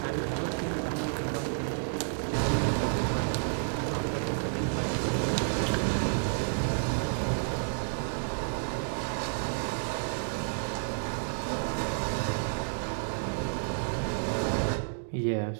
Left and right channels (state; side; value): silent; left; digital silence